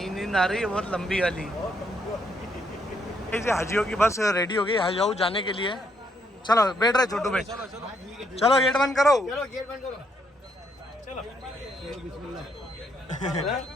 आ रही है बहुत लंबी वाली। ऐसे हाजियों की बस रेडी हो गई हज हाउस जाने के लिए। चलो बैठ रहे छोटू बैठ, चलो गेट बंद करो। चलो गेट बंद करो। चलो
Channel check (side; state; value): both; normal; correlation 0.74